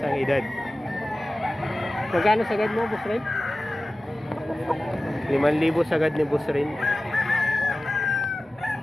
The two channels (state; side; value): normal; both; correlation 0.96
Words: edad. Magkano sagad mo Boss Rain? 5,000 sagad ni Boss Rain.